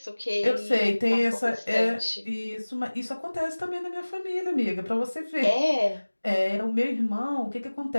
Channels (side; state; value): both; inverted; correlation -1.00